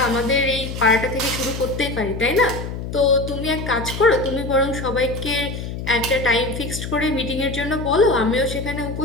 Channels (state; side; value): noise; left; hum, 7 dB below the sound